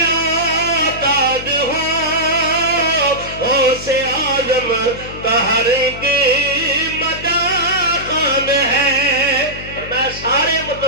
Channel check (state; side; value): noise; left; hum, 13 dB below the sound